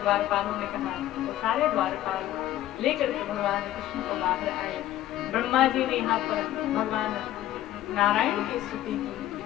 द्वारपालों ने कहा, तो सारे द्वारपाल लेकर के भगवान कृष्ण को बाहर आए। ब्रह्मा जी ने यहाँ पर भगवान नारायण की स्तुति की,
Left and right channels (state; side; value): quieter; right; 13.6 dB